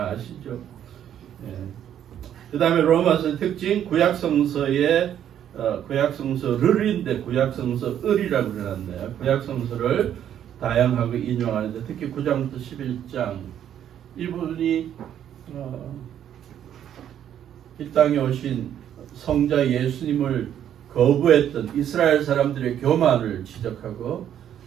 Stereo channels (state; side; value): quieter; left; 10.1 dB